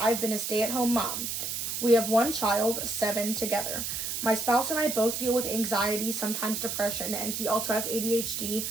been a stay-at-home mom. We have 1 child, 7 together. My spouse and I both deal with anxiety, sometimes depression, and he also has ADHD,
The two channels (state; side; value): noise; right; hiss, 3 dB below the sound